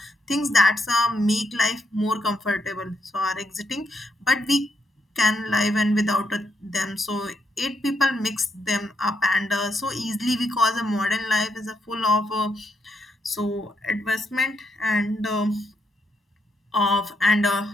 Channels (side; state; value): both; normal; correlation 0.78